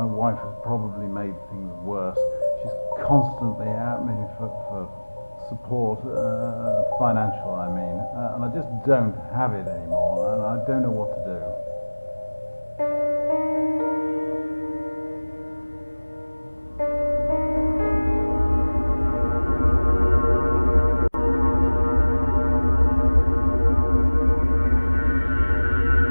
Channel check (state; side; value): inverted; both; correlation -1.00